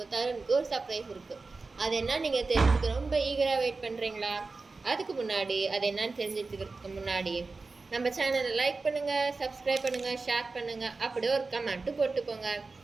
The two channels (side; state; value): left; quieter; 3.9 dB